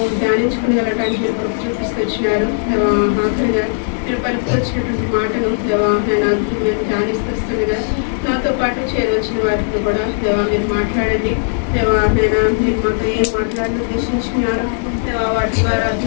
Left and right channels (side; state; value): right; silent; digital silence